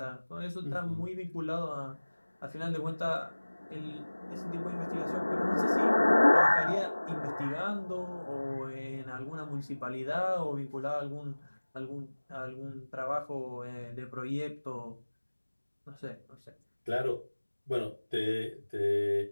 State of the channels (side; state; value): both; inverted; correlation -1.00